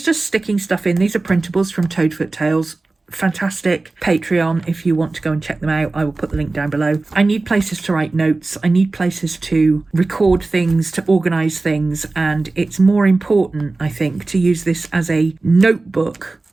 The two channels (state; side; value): quieter; left; 3.4 dB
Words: just sticking stuff in. These are printables from Toadfoot Tales. Fantastic. Patreon, if you want to go and check them out, I will put the link down below. I need places to write notes. I need places to record things, to organise things, and it's more important, I think, to use this as a notebook